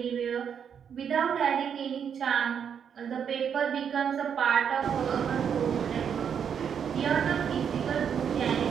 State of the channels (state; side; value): quieter; left; 7.7 dB